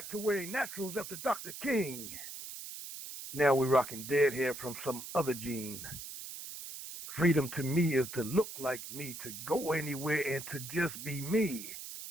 to wearing naturals after Dr. King. Now we're rocking dead hair from some other gene. Freedom to me is to look like me, to go anywhere and to just be me.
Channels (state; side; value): noise; right; hiss, 10 dB below the sound